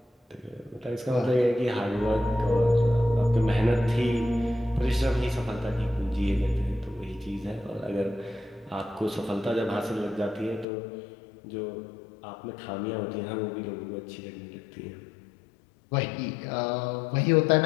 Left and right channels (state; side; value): drops out; right; at 10.7 s